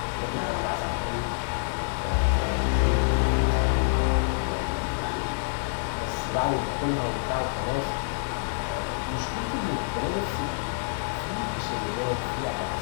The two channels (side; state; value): right; silent; digital silence